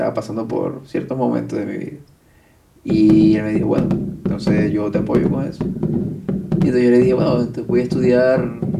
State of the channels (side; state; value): both; identical; correlation 1.00